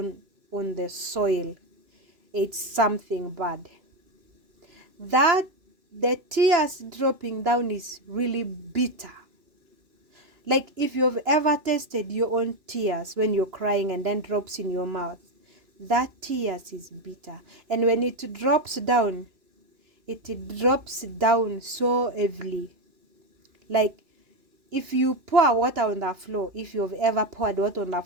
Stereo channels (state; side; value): late; left; 3.0 ms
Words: on the soil, it's something bad. That the tears dropping down is really bitter. Like if you've ever tasted your own tears when you're crying and then drops in your mouth, that tears is bitter. And when it drops down so heavily. Like if you pour water on the floor, if you've ever poured water on the